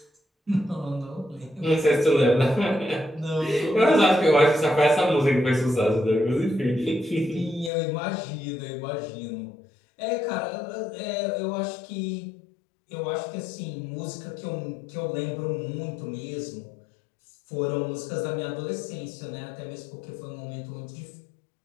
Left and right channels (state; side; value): drops out; right; at 7.7 s